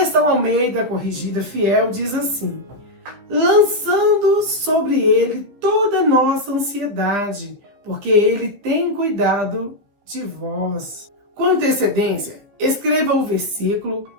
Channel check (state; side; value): late; left; 15 ms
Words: Almeida Corrigida Fiel diz assim: lançando sobre Ele toda a nossa ansiedade, porque Ele tem cuidado de vós. Com antecedência, escreva o versículo